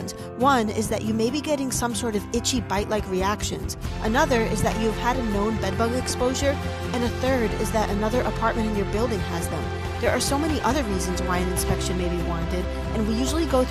One is that you may be getting some sort of itchy bite-like reactions. Another is that you've had a known bedbug exposure. And a third is that another apartment in your building has them. There are so many other reasons why an inspection may be warranted, and we usually go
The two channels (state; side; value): identical; both; correlation 1.00